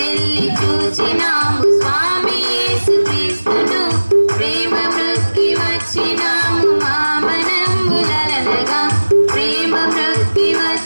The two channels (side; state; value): both; inverted; correlation -1.00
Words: చూచినాము స్వామి యేసుక్రీస్తును, ప్రేమ మృక్కి వచ్చినాము మామనంబులనగా, ప్రేమ మృక్కి